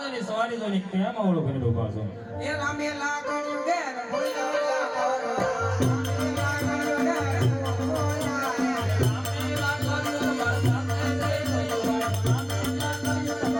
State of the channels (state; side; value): identical; both; correlation 1.00